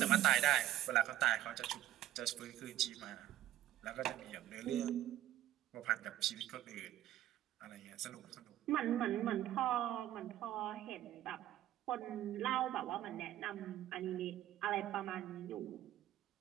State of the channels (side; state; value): left; quieter; 13.3 dB